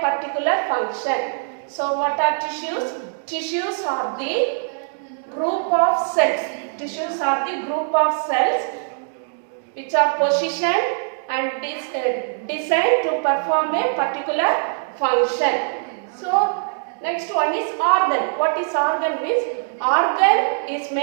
function. So what are tissues? Tissues are the group of cells. Tissues are the group of cells which are positioned and designed to perform a particular function. So next one is organ. What is organ means? Organ is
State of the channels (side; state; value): left; silent; digital silence